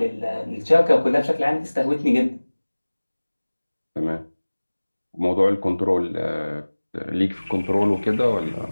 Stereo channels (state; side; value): inverted; both; correlation -1.00